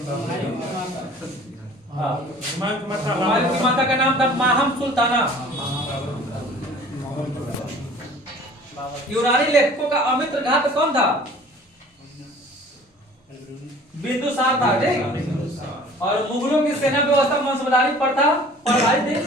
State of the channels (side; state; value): both; normal; correlation 0.48